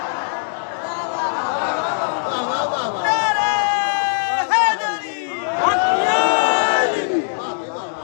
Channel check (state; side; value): silent; right; digital silence